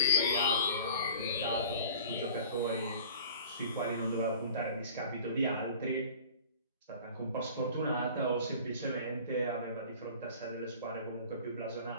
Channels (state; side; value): inverted; both; correlation -0.44